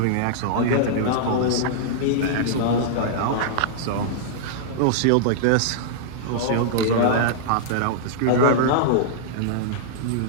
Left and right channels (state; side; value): different; both; correlation -0.02